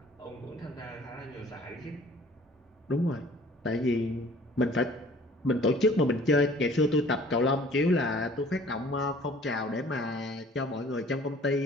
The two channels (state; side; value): normal; both; correlation 0.52